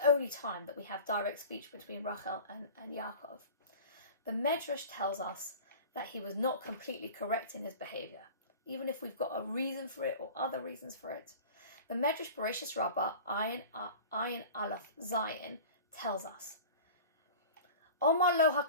only time that we have direct speech between Rachel and Yaakov. The Medrash tells us that he was not completely correct in his behavior, even if we've got a reason for it or other reasons for it. The Medrash Bereshis Rabbah, Ayin Aleph Zayin, tells us, Omar lo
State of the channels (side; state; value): both; inverted; correlation -0.38